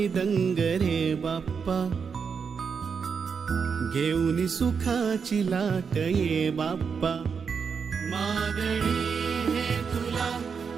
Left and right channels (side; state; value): left; quieter; 6.0 dB